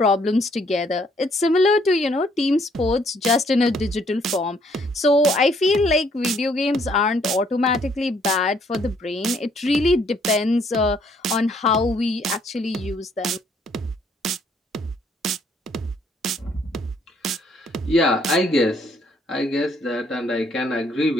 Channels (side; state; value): both; normal; correlation 0.66